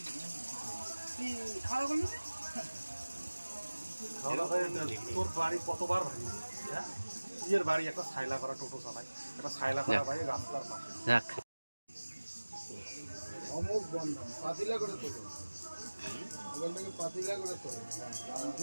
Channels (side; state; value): both; inverted; correlation -1.00